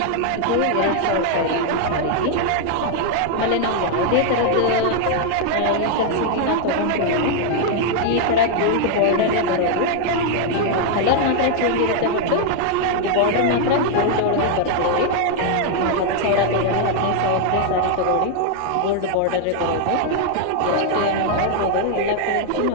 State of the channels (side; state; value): both; different; correlation 0.00